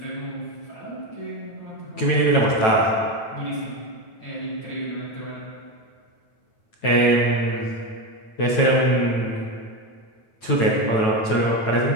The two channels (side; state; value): right; late; 9.1 ms